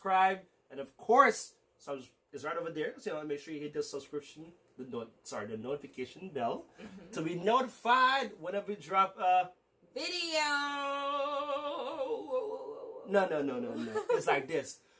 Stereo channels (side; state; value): both; identical; correlation 1.00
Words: and of course, it's right over there. So make sure you hit the subscription, the notification bell to be notified whenever we drop a video. No. It's like this.